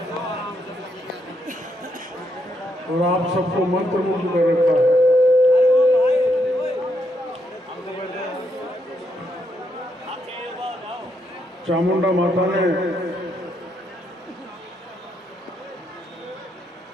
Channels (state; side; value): normal; both; correlation 0.78